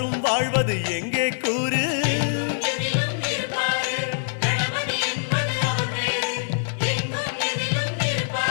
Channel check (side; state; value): right; silent; digital silence